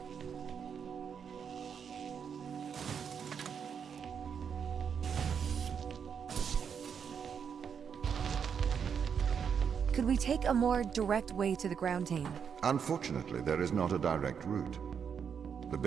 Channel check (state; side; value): quieter; left; 7.1 dB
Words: Could we take a more direct way to the ground team? Unfortunately, there is not a direct route. The